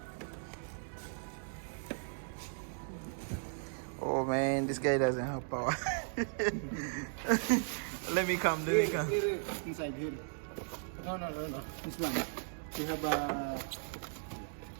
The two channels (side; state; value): left; silent; digital silence